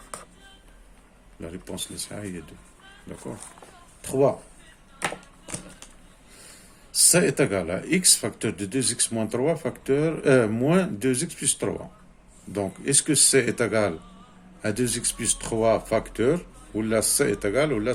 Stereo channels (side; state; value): both; identical; correlation 1.00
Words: La réponse, il y a 2. D'accord. 3. Ça est égal à x facteur de 2x moins 3 facteur moins 2x plus 3. Donc, est-ce que c est égal à 2x plus 3 facteur, ou là c est égal, ou là